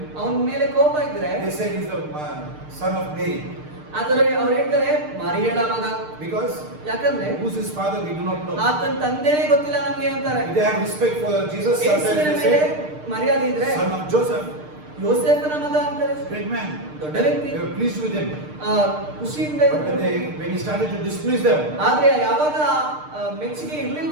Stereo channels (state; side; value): late; left; 6.6 ms